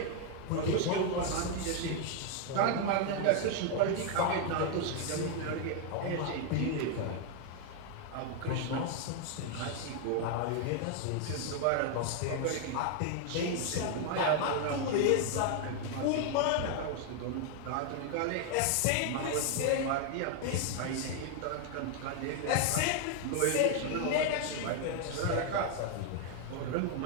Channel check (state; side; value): different; both; correlation 0.00